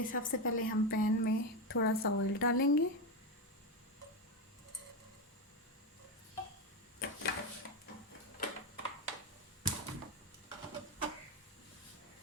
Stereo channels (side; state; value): both; normal; correlation 0.12